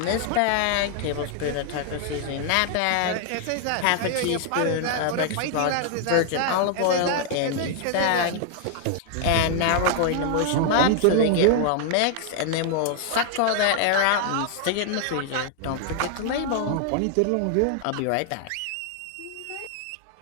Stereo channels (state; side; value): different; both; correlation 0.00